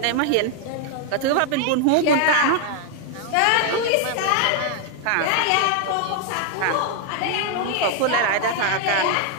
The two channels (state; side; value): different; both; correlation 0.00